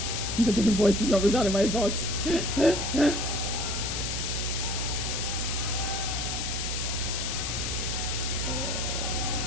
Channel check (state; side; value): noise; left; hiss, 3 dB below the sound